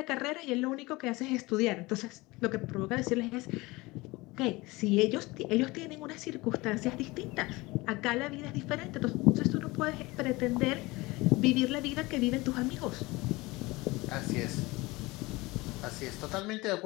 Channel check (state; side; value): quieter; right; 22.1 dB